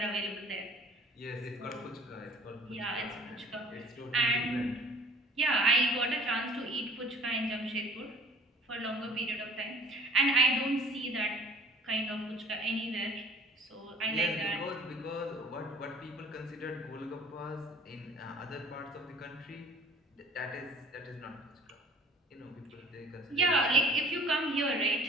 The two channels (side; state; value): both; normal; correlation 0.49